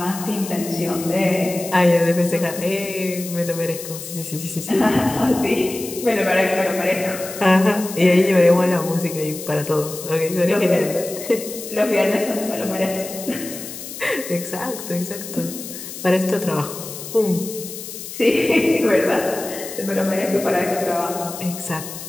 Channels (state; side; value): noise; left; hiss, 11 dB below the sound